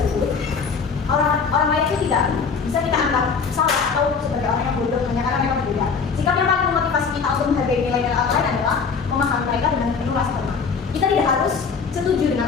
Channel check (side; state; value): right; quieter; 5.5 dB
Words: orang lain itu tidak bisa kita anggap salah atau sebagai orang yang bodoh hanya karena mereka berbeda. Sikap yang paling memotivasi kita untuk menghargai nilai-nilai orang lain adalah memahami mereka dengan penuh rasa hormat. Kita tidak harus setuju dengan